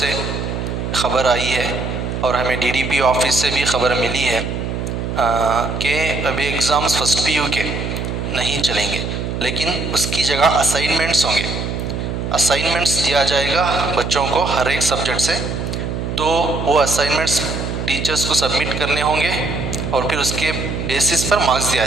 ख़बर आई है और हमें डीडीपी ऑफिस से भी ख़बर मिली है कि अभी एग्ज़ाम्स फर्स्ट पीयू के नहीं चलेंगे, लेकिन उसकी जगह असाइनमेंट्स होंगे। असाइनमेंट्स दिया जाएगा बच्चों को हर एक सब्जेक्ट से, तो वो असाइनमेंट्स टीचर्स को सबमिट करने होंगे और फिर उसके बेसिस पर मार्क्स दिया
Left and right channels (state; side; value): noise; right; hum, 4 dB below the sound